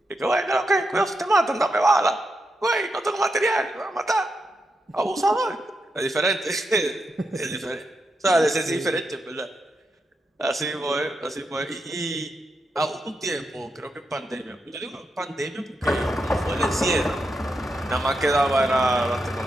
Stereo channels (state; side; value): normal; both; correlation 0.85